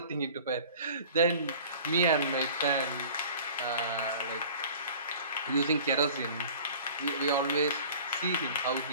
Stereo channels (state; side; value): inverted; both; correlation -0.45